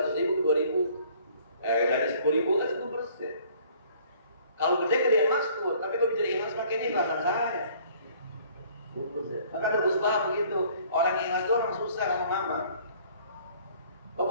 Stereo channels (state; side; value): inverted; both; correlation -0.56